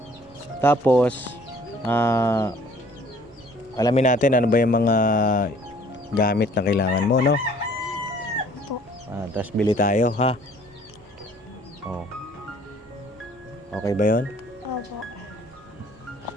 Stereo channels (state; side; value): noise; right; rumble, 28 dB below the sound